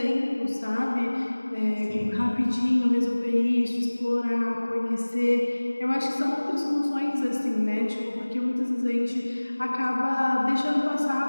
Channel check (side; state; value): both; inverted; correlation -1.00